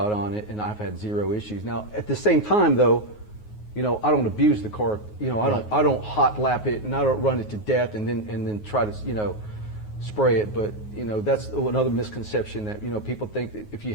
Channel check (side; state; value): right; late; 9.5 ms